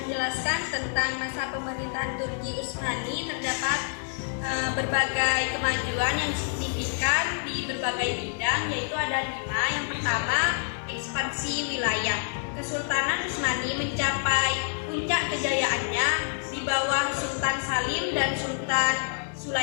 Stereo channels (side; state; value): right; silent; 59 dB below the other